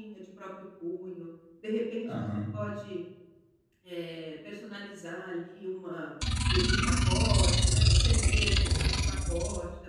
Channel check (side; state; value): both; identical; correlation 1.00